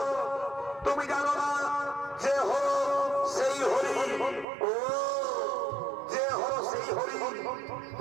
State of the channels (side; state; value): left; drops out; at 4.5 s